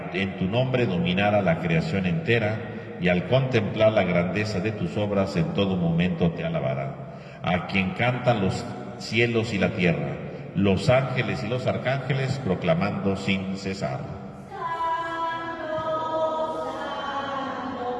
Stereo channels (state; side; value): identical; both; correlation 1.00